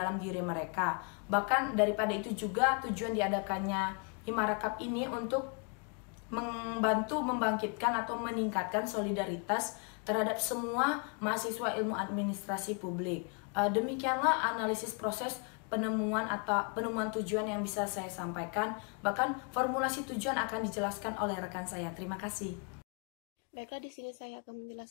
diri mereka. Bahkan daripada itu juga tujuan diadakannya Himara Cup ini untuk membantu membangkitkan atau meningkatkan solidaritas terhadap semua mahasiswa ilmu administrasi publik. Demikianlah analisis proses penemuan tujuan yang bisa saya sampaikan. Bahkan formulasi tujuan akan dijelaskan oleh rekan saya. Terima kasih. Baiklah, di sini saya akan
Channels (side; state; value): right; quieter; 38.5 dB